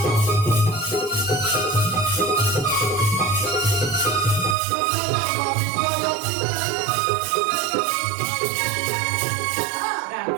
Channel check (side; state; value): left; drops out; at 4.5 s